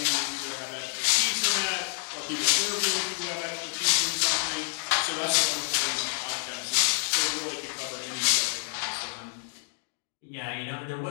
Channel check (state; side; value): silent; right; 59 dB below the other